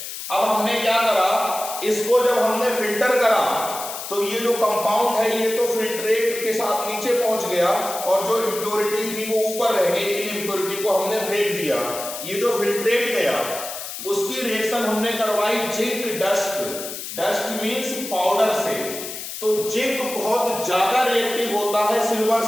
अब हमने क्या करा, इसको जब हमने फिल्टर करा तो ये जो कंपाउंड है ये तो फिल्ट्रेट के साथ नीचे पहुंच गया और जो इम्प्योरिटी थी वो ऊपर रह गई। इन इम्प्योरिटी को हमने फेंक दिया। ये जो फिल्ट्रेट गया उसकी रिएक्शन हमने करवाई zinc dust. Dust means powder से। तो जिंक बहुत ज्यादा रिएक्टिव होता है सिल्वर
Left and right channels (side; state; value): left; noise; hiss, 8 dB below the sound